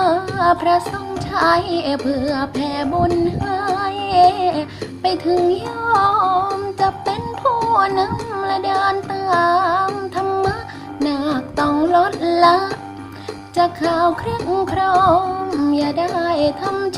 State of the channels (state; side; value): identical; both; correlation 1.00